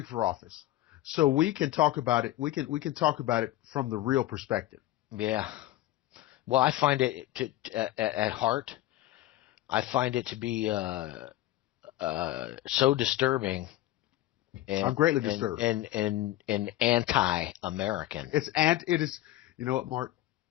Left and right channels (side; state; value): right; quieter; 15.2 dB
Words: for office, so we can talk about it. We can talk about it from the real perspective. Yeah. Well, I find it at heart. I find it to be so disturbing I'm and greatly and disturbed. and anti-American. It is. You know what, Mark?